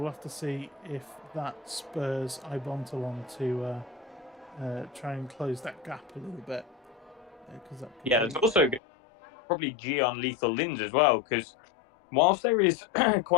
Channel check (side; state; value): right; drops out; at 8.8 s